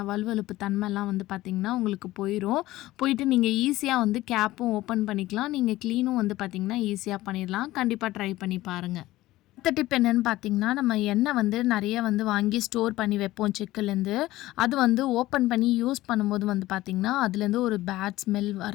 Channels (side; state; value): right; quieter; 16.8 dB